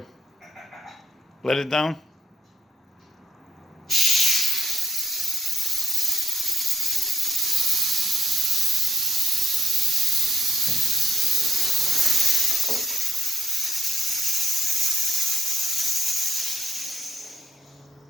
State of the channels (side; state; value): both; normal; correlation 0.76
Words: Let it down?